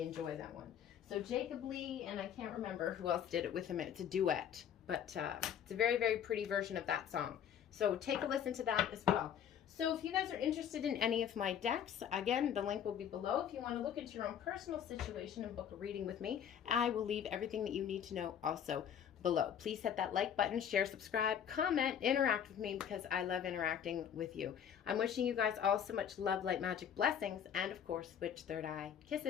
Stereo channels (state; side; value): quieter; right; 8.9 dB